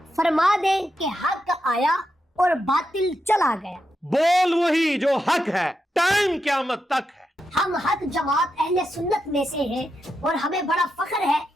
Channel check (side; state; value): both; normal; correlation 0.85